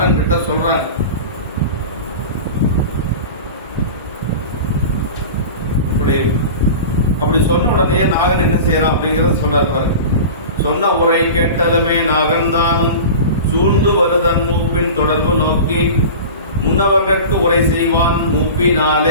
கிட்ட சொல்றாங்க. அப்படி சொன்ன உடனே நாகன் என்ன செய்யறான் அப்படிங்கறத சொல்றாரு. சொன்ன உரை கேட்டலுமே நாகன் தானும் சூழ்ந்து வருதன் மூப்பின் தொடர்பு நோக்கி முன்னவர்கட்கு உரை செய்வான்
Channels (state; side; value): inverted; both; correlation -0.33